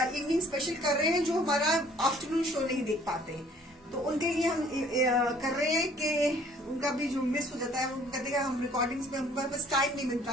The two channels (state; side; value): normal; both; correlation 0.57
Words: स्पेशल कर रहे हैं जो हमारा आफ्टरनून शो नहीं देख पाते, तो उनके लिए हम कर रहे हैं कि उनका भी जो मिस हो जाता है, वो कहते हैं हम रिकॉर्डिंग्स में हमारे पास टाइम नहीं